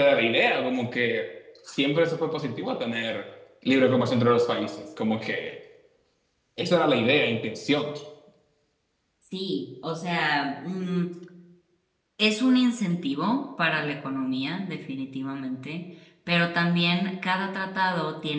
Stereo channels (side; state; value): both; identical; correlation 1.00